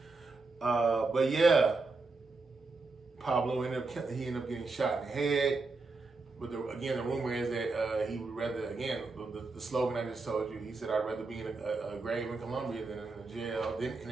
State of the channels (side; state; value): left; quieter; 3.8 dB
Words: But yeah, Pablo ended up getting shot in the head. But again, the rumor is that he would rather, again, the slogan I just told you, he said, I'd rather be in a grave in Colombia than in